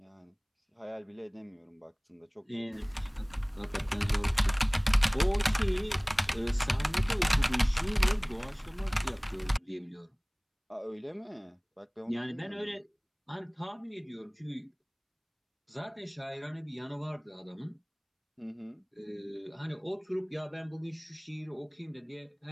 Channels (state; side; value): identical; both; correlation 1.00